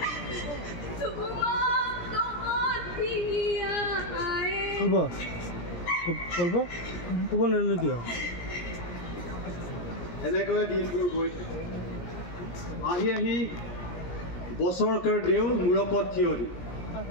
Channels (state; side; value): late; right; 17 ms